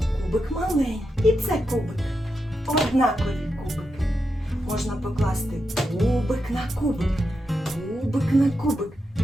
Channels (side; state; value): both; normal; correlation 0.86